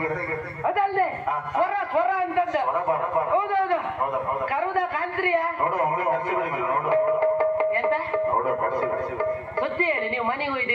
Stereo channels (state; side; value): identical; both; correlation 1.00